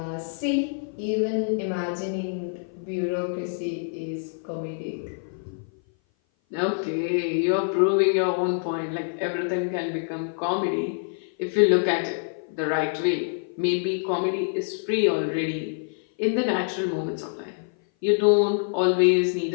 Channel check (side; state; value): right; silent; 57 dB below the other